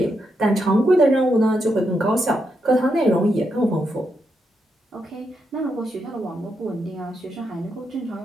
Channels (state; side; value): normal; both; correlation 0.82